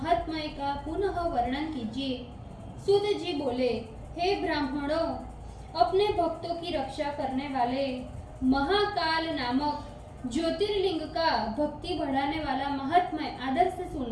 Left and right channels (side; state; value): both; identical; correlation 1.00